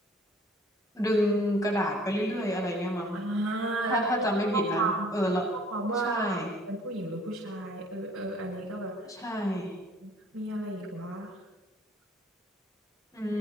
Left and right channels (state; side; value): normal; both; correlation 0.55